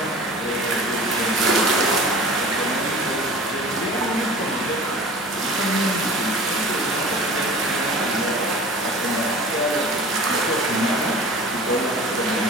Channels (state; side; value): normal; both; correlation 0.41